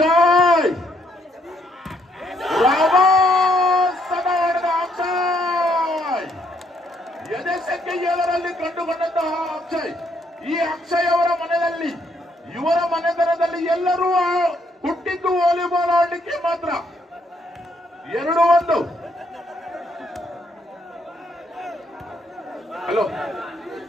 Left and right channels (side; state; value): both; normal; correlation 0.72